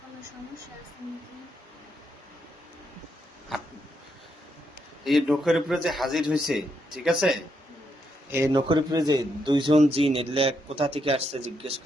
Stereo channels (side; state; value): both; normal; correlation 0.79